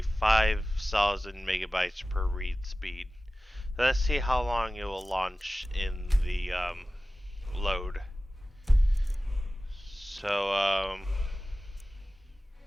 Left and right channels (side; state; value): both; normal; correlation 0.96